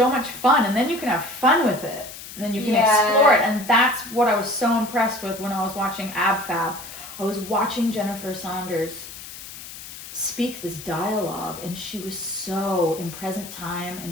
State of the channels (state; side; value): noise; left; hiss, 13 dB below the sound